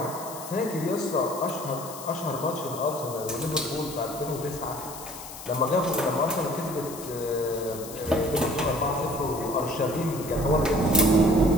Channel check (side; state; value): left; noise; hiss, 13 dB below the sound